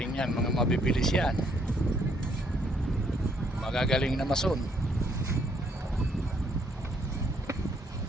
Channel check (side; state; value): both; normal; correlation 0.69